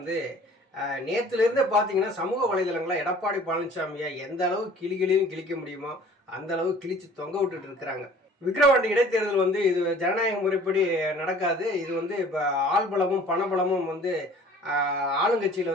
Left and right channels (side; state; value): both; normal; correlation 0.50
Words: நேற்றுலேருந்து பார்த்தீங்கன்னா சமூக வலைதளங்களில் எடப்பாடி பழனிசாமியை எந்த அளவு கிளிகளையும் கிழிக்க முடியுமோ அந்த அளவு கிழிச்சு தொங்க விட்டுட்டு இருக்கிறாங்க. விக்கிரவாண்டி இடைத்தேர்தல் இது ஜனநாயக முறைப்படி நடக்காது. இது இப்போ ஆள்பலமும் பணபலமும்